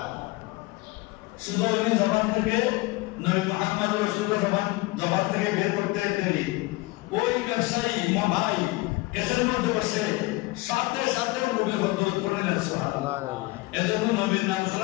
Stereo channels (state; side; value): quieter; right; 21.8 dB